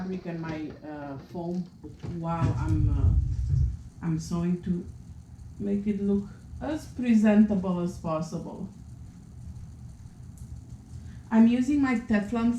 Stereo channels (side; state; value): both; identical; correlation 1.00